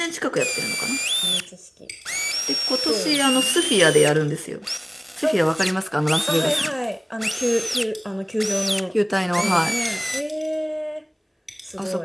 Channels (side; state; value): both; identical; correlation 1.00